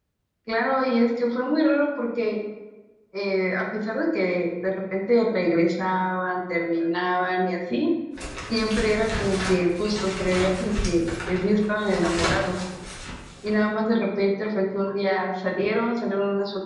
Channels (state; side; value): identical; both; correlation 1.00